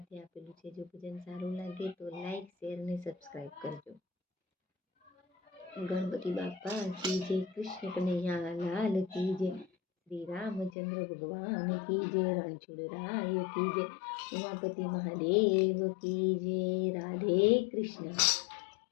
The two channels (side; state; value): right; drops out; at 10.7 s